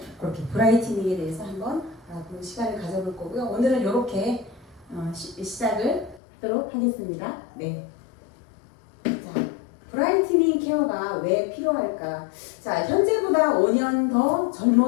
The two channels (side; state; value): right; drops out; at 6.2 s